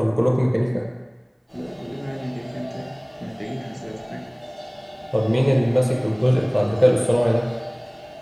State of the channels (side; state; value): both; identical; correlation 1.00